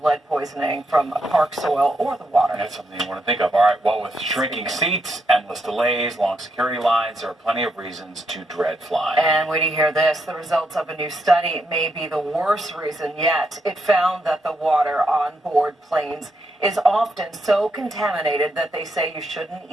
lead poisoning from park soil or the water. That's something you want to think of. All right, well, with shrinking seats, endless delays, long security lines, there are plenty of reasons to dread flying. And wait to hear this. The results of a new study may be the worst reason yet. It found that the water on board planes is often so contaminated that they say you shouldn't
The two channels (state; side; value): normal; both; correlation 0.79